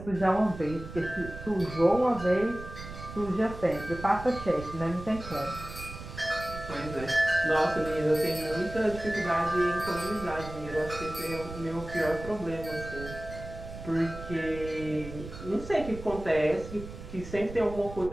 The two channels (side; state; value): right; noise; rumble, 12 dB below the sound